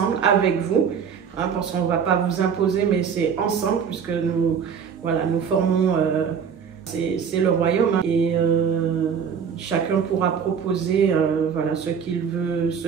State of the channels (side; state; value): left; quieter; 7.0 dB